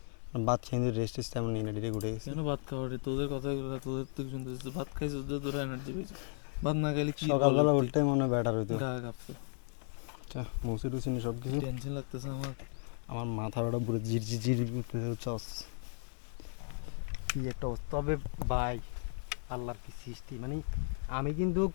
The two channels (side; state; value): right; silent; 54 dB below the other